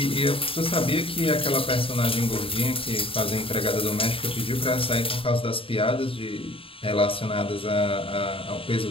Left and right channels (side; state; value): right; late; 0.27 ms